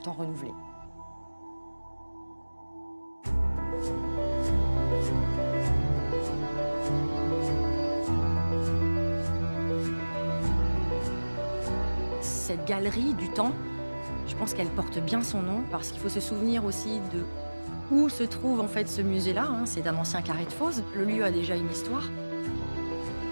temps renouvelées. Cette galerie du temps, je pense qu'elle porte bien son nom parce qu'il faut se souvenir aussi de où se trouve en fait ce musée-là. C'est un ancien carré de fosse. Le lieu a déjà une histoire.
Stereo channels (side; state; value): both; inverted; correlation -1.00